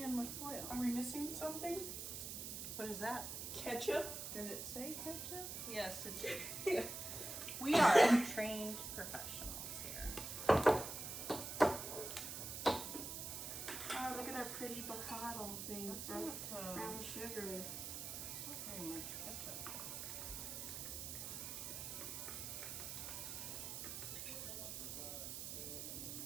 with foil. Are we missing something? What is that? Ketchup? Did it say ketchup? Yes, it did. Yeah. We are trained professionals here. Oh, look at our pretty bottle thing That's for not, brown sugar. not very much ketchup.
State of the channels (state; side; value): noise; right; hiss, 5 dB below the sound